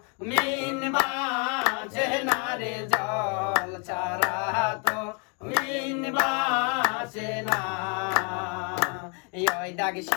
মিন বাঁচে না রে, জল ছাড়া তো মিন বাঁচে না। ওই দাগ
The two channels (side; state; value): right; quieter; 37.2 dB